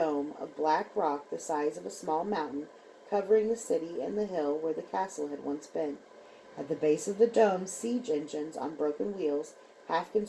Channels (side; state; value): both; identical; correlation 1.00